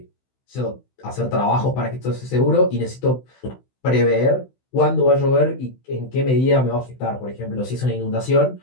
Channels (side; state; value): right; late; 16 ms